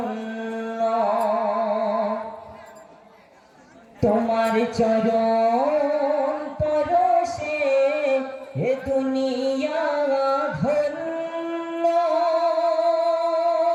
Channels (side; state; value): both; identical; correlation 1.00